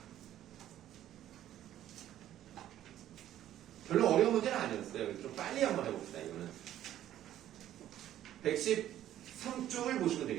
별로 어려운 문제는 아니었어요. 좀 빨리 한번 해봅시다, 이거는. 113쪽을 보시면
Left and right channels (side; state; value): left; quieter; 12.2 dB